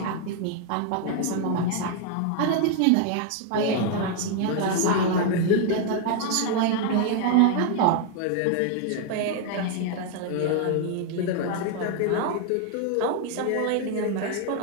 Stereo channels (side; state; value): both; different; correlation 0.00